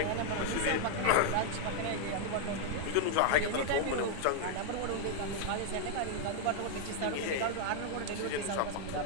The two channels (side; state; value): both; different; correlation 0.00